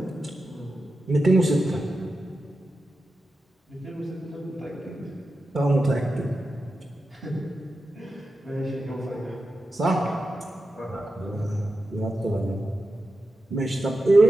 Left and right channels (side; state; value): both; normal; correlation 0.91